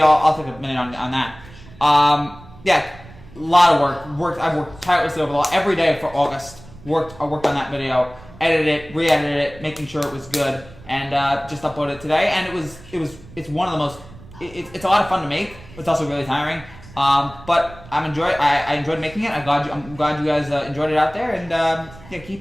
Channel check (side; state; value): right; noise; rumble, 20 dB below the sound